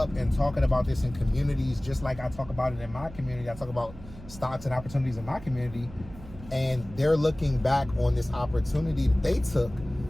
and talking about this in communities, just like I talk about it in my community. I talk about stocks and opportunities in my community, and they're looking back on this opportunity that they took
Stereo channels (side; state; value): right; noise; hum, 16 dB below the sound